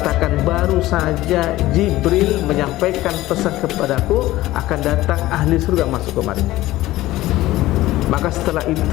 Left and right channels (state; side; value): quieter; right; 16.7 dB